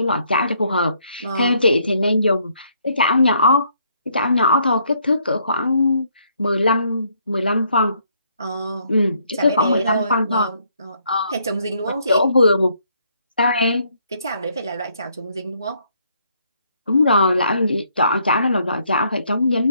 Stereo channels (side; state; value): both; inverted; correlation -0.70